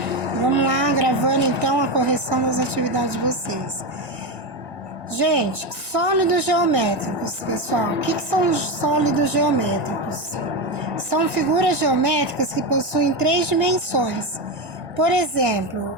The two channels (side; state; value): left; late; 1.7 ms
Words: vamos lá gravando então a correção das atividades de vocês. Gente, sólidos geométricos, pessoal, o que são sólidos geométricos? São figuras geométricas que possuem 3 dimensões. Por exemplo,